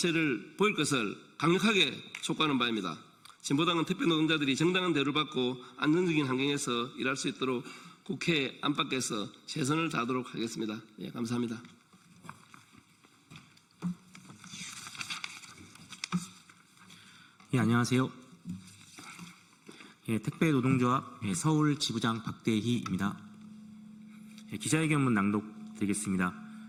보일 것을 강력하게 촉구하는 바입니다. 진보당은 택배 노동자들이 정당한 대우를 받고 안정적인 환경에서 일할 수 있도록 국회 안팎에서 최선을 다하도록 하겠습니다. 예, 감사합니다. 예, 안녕하세요. 예, 택배노동조합 서울 지부장 박대희입니다. 예, 기자회견문 낭독드리겠습니다.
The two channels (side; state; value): both; identical; correlation 1.00